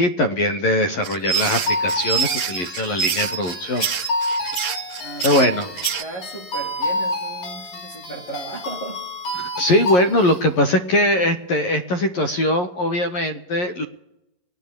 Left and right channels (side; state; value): right; late; 11 ms